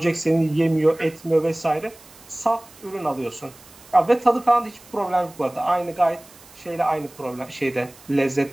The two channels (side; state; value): right; noise; hiss, 24 dB below the sound